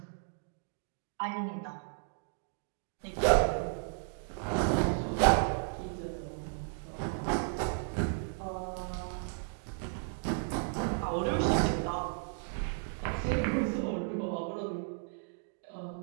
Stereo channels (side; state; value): left; silent; digital silence